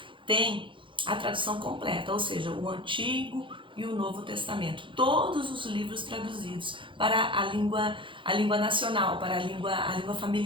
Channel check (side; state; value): left; late; 0.24 ms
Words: têm a tradução completa, ou seja, o Antigo e o Novo Testamento. Todos os livros traduzidos para a língua nacional, para a língua